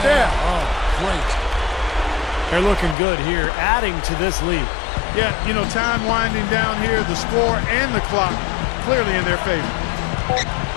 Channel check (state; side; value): drops out; right; at 3.0 s